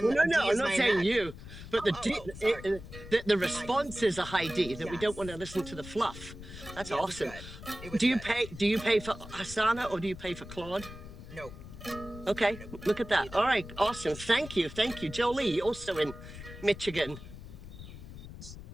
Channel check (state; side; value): noise; left; rumble, 14 dB below the sound